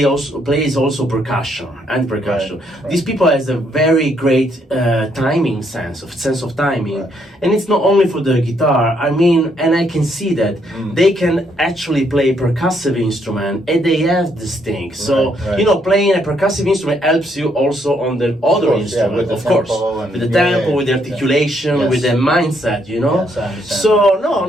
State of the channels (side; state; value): both; normal; correlation 0.72